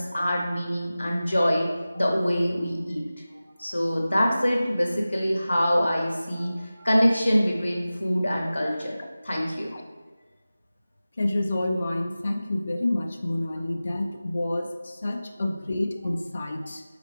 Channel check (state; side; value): inverted; both; correlation -0.96